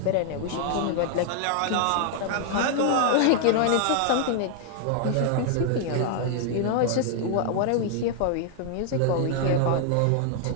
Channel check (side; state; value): both; different; correlation 0.00